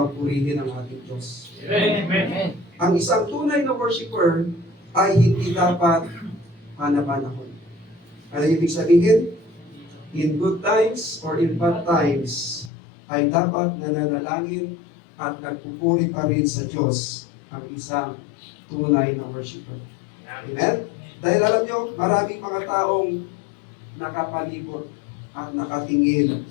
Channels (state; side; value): drops out; right; at 12.7 s